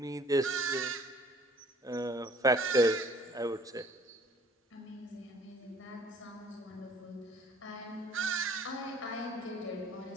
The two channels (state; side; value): normal; both; correlation 0.55